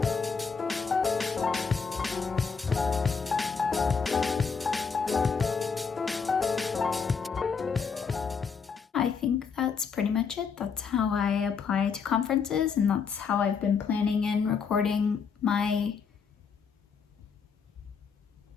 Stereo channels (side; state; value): right; quieter; 5.8 dB